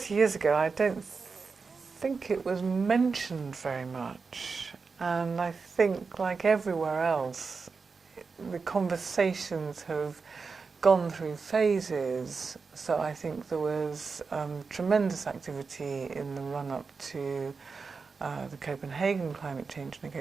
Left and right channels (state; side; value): quieter; left; 4.8 dB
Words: years ago, I don't think it was mentioned very much. And I think, like everywhere else, the conversations have gone through phases. So I think there was tremendous activity in the run-up to the Copenhagen climate change